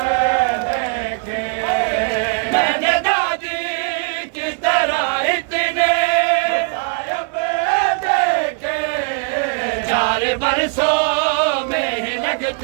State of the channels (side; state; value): left; quieter; 36.0 dB